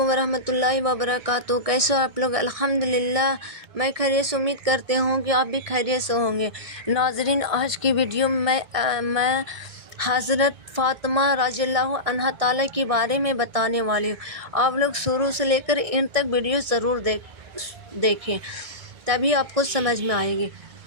ورحمۃ اللہ وبرکاتہ۔ کیسے ہو آپ لوگ؟ الحمدللہ میں خیریت سے امید کرتے ہوں کہ آپ بھی خیریت سے ہوں گے۔ ناظرین، آج کی ویڈیو میں حضرت فاطمہ رضی اللہ عنہا تعالیٰ کے بارے میں بتانے والی ہوں۔ آپ لوگ شروع سے لے کر ان تک ویڈیو ضرور دیکھیں، تبھی آپ کو سمجھ میں آئے گی۔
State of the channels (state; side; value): late; left; 1.6 ms